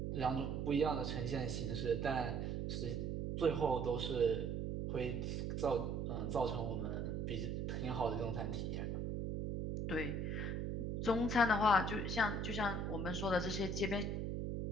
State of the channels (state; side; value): noise; right; hum, 1 dB below the sound